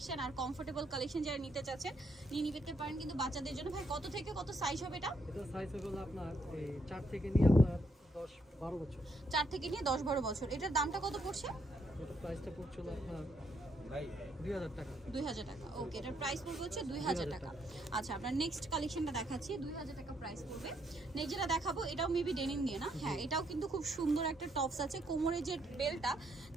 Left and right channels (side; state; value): both; normal; correlation 0.74